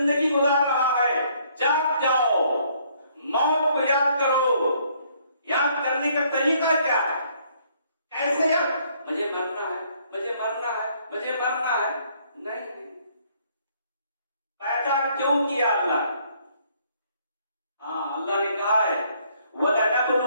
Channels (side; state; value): both; inverted; correlation -0.65